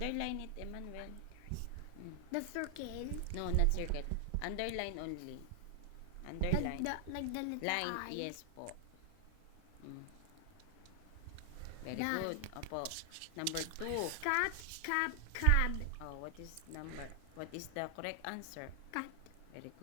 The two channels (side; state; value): both; different; correlation 0.00